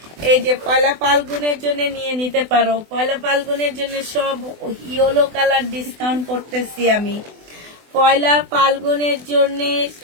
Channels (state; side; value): late; left; 24 ms